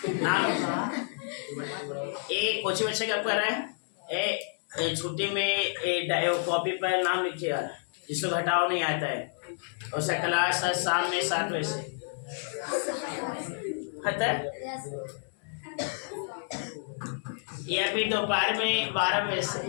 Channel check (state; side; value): silent; right; digital silence